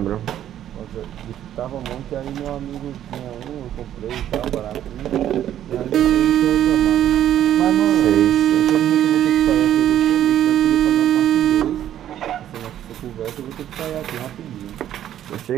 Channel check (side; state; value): left; quieter; 11.2 dB